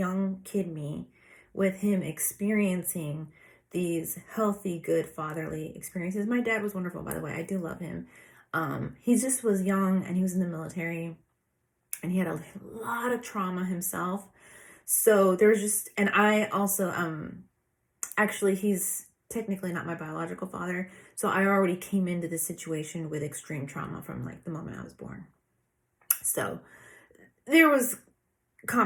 kid me, with him experiencing these healthy, good fatherly experiences. My dad was wonderful, by the way. I do love him. He just was young and he was in the military and he had a lot of trauma himself. So there's just, and I also, actually, he's technically not my biological father. So I already came into the situation with extreme trauma from like the moment I was born. So there was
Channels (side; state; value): both; identical; correlation 1.00